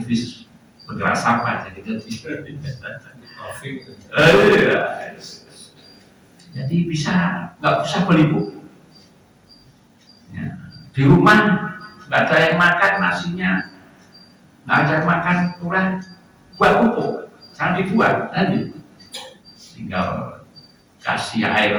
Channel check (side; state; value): both; identical; correlation 1.00